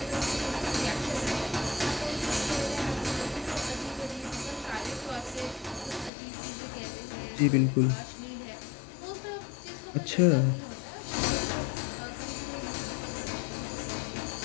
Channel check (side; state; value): right; drops out; at 6.1 s